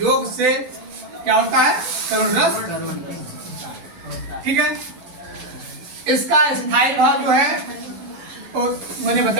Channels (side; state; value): left; late; 12 ms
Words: से क्या होता है? करुण रस। ठीक है, इसका स्थायी भाव जो है तो मैंने